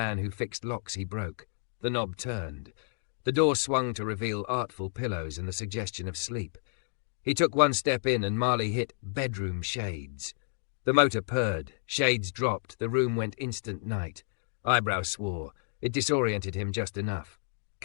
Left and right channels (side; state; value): right; silent; digital silence